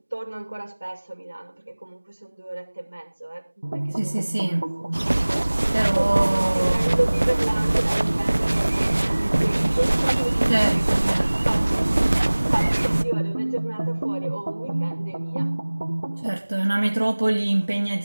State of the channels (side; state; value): both; inverted; correlation -1.00